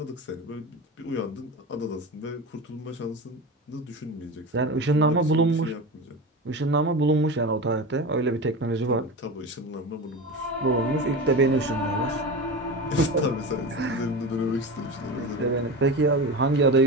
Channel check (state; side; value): normal; both; correlation 0.27